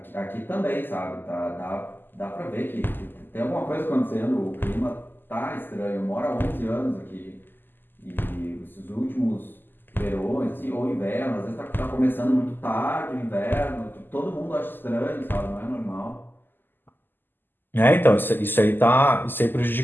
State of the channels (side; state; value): right; late; 0.093 ms